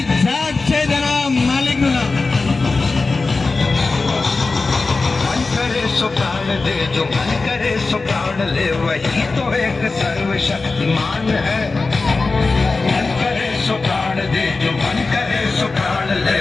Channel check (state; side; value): quieter; right; 3.8 dB